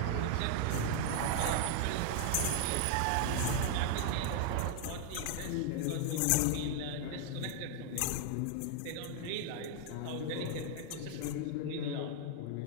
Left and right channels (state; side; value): different; both; correlation 0.00